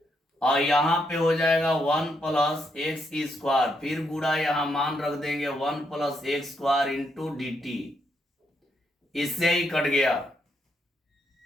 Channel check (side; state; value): both; normal; correlation 0.78